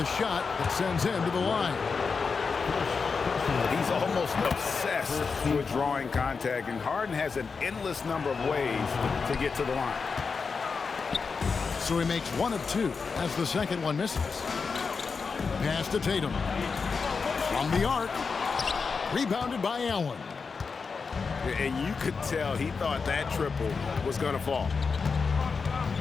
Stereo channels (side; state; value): right; quieter; 5.1 dB